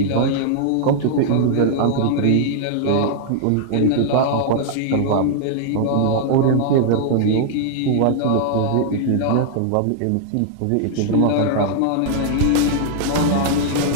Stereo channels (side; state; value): both; different; correlation -0.01